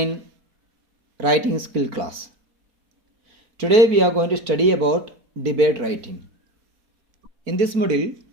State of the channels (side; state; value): left; late; 4.2 ms